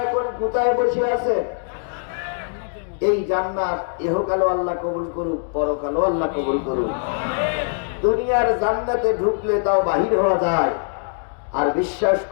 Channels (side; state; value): right; silent; 64 dB below the other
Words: এখন কোথায় বসে আছেন? এই জান্নাত ইহকালও আল্লাহ কবুল করুক, পরকালও আল্লাহ কবুল করুক। দুনিয়ার জান্নাতে ঢুকলে তাও বাহির হওয়া যায়। আর বিশ্বাস